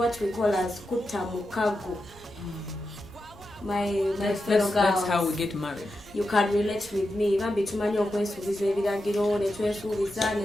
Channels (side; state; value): left; noise; rumble, 24 dB below the sound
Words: we call as kutamukago. My fellow girls, that's how we get married. you can relate with me. Even between okwesuubiza ebiragiro netwesuubiza